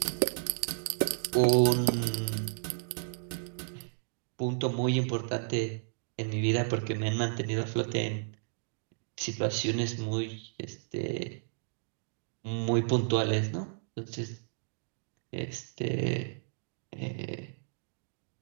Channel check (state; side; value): silent; left; digital silence